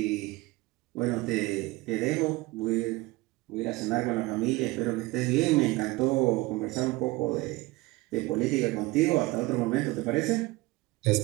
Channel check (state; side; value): quieter; left; 21.2 dB